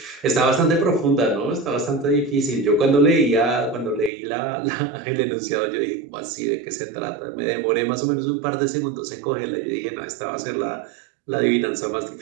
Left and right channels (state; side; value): drops out; left; at 4.1 s